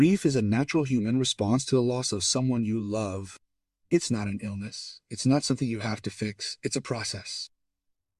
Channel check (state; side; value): identical; both; correlation 1.00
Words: is a natural human response to the loss of someone you love. It's not an illness. It's not something you have to fix. It's a process.